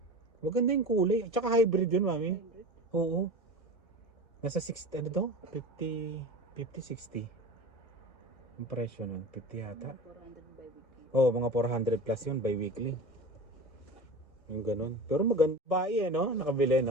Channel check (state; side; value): late; right; 1.6 ms